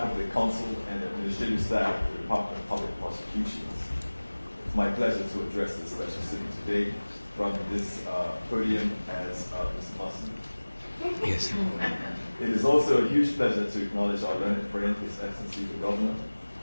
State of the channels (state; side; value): inverted; both; correlation -1.00